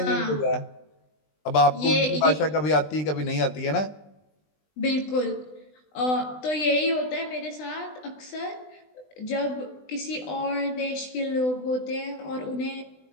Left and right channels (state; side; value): late; right; 20 ms